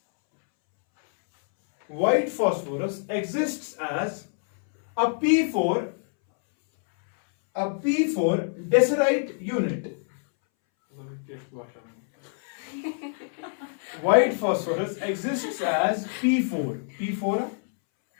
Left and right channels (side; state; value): right; silent; 61 dB below the other